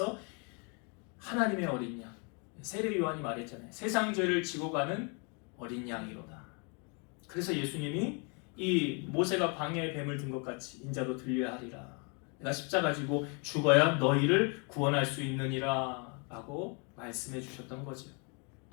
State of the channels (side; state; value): right; quieter; 35.1 dB